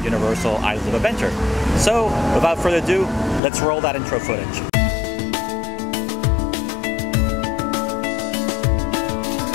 Universal Islands of Adventure. So, without further ado, let's roll that intro footage.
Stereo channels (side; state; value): right; drops out; at 3.4 s